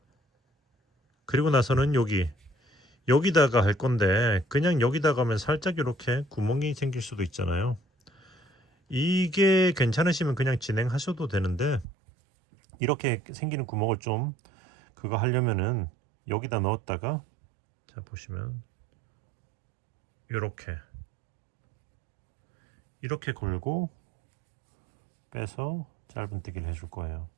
그리고 나서는 여기다가 할 건데 그냥 여기다가 하면 살짝 이렇게 구멍이 생길 수도 있잖아요. 이게 괜찮으시면 그냥 진행하셔도 되는데 이렇게 생기는 구멍을 좀 그거 하려면은 여기다 넣었다가, 자, 보시면 이렇게 걸고 빼서 짧은뜨기를 해줄 거예요.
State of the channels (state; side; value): drops out; left; at 11.9 s